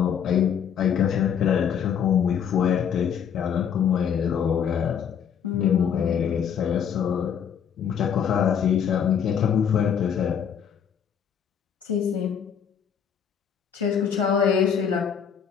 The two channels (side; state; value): right; quieter; 7.9 dB